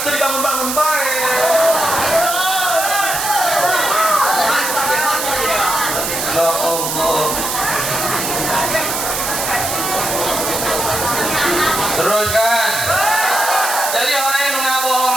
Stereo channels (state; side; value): noise; right; hiss, 2 dB below the sound